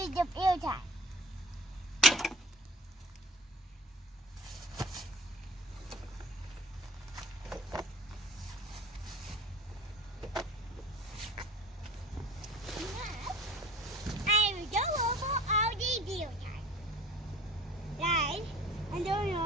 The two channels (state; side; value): normal; both; correlation 0.43